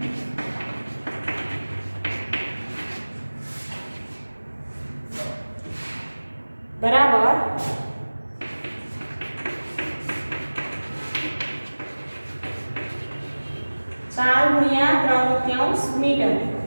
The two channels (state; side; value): inverted; both; correlation -1.00